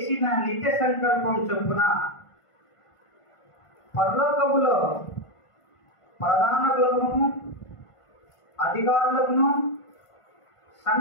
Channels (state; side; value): late; right; 1.5 ms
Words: నిత్య సంకల్పం చొప్పున పరలోకములో ప్రధానులను అధికారులను